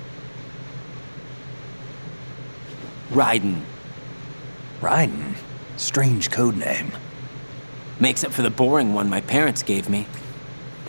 Raiden. Raiden? Strange code name. Makes up for the boring one my parents gave me.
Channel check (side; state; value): both; inverted; correlation -1.00